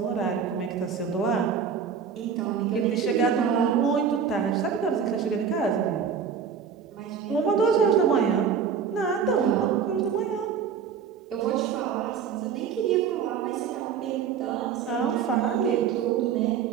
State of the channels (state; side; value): quieter; left; 6.9 dB